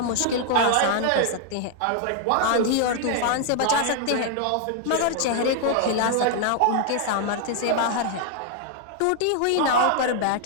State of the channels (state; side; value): different; both; correlation 0.00